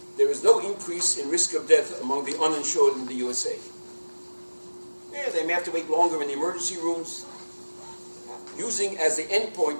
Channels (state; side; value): inverted; both; correlation -1.00